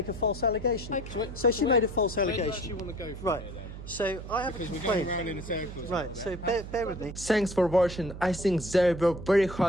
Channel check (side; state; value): right; noise; hum, 11 dB below the sound